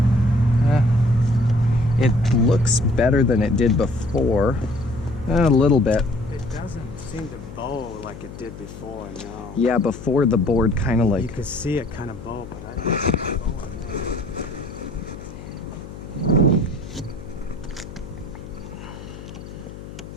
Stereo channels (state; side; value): noise; left; hum, 14 dB below the sound